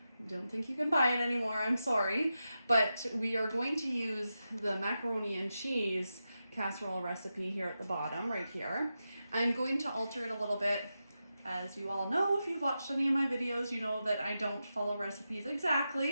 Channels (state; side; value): inverted; both; correlation -0.90